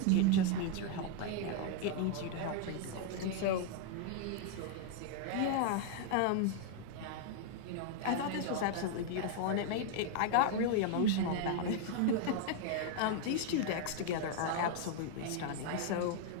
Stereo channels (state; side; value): different; both; correlation 0.00